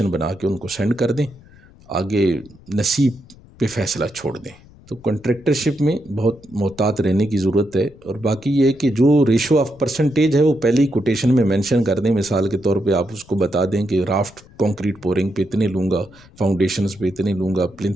بنا کے ان کو سینڈ کر دیں، آگے نصیب پہ فیصلہ چھوڑ دیں. تو کنٹریکٹرشپ میں بہت محتاط رہنے کی ضرورت ہے. اور باقی یہ ہے کہ جو ریشو آف پرسنٹیج ہے وہ پہلے ہی کوٹیشن میں مینشن کر دیں. مثال کے طور پہ آپ اس کو بتا دیں کہ رافٹ کانکریٹ پورنگ پہ اتنے لوں گا، فاؤنڈیشنز پہ اتنے لوں گا،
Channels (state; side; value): noise; left; rumble, 25 dB below the sound